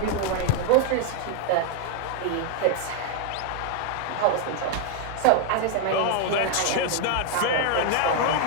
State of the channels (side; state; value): both; different; correlation 0.00